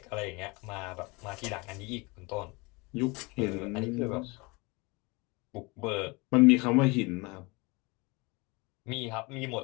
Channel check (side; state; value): right; quieter; 26.3 dB